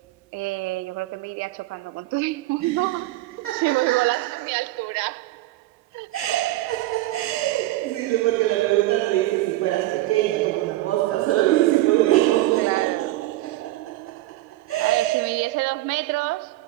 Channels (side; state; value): left; quieter; 17.0 dB